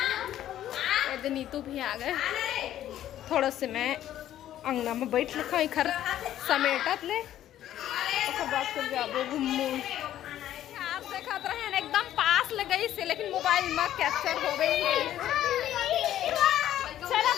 नीतू भी आ गए। थोड़ा से मैं अंगना में बैठ रखा घर समेटत ले। बाद फिर जाबो घूमू। आप देखत रहे एकदम पास ले गई से, लेकिन मोबाइल में कैप्चर हो गई है। चलो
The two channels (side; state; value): right; quieter; 12.1 dB